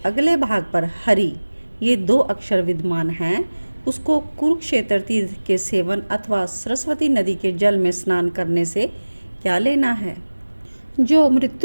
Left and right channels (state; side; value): inverted; both; correlation -1.00